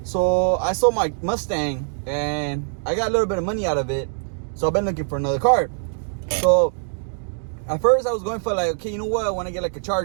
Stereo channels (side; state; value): left; silent; digital silence